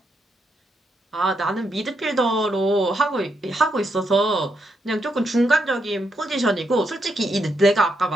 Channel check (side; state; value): both; normal; correlation 0.80